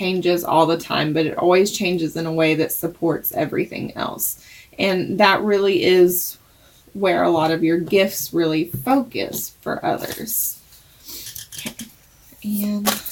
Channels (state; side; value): identical; both; correlation 1.00